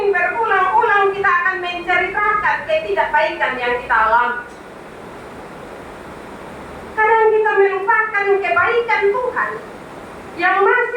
berulang-ulang kita akan menceritakan ketidakbaikan yang kita alami. Kadang kita melupakan kebaikan Tuhan yang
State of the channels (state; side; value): identical; both; correlation 1.00